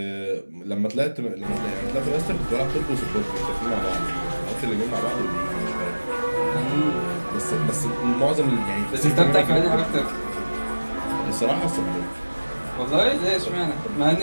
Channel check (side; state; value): both; inverted; correlation -1.00